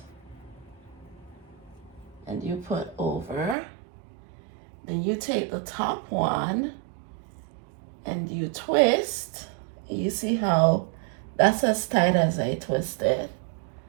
and you put over. Then you take the top one and you twist. You see how that's as tight as I twist it.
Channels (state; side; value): drops out; left; at 3.6 s